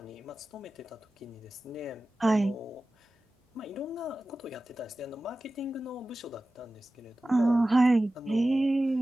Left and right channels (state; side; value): normal; both; correlation 0.96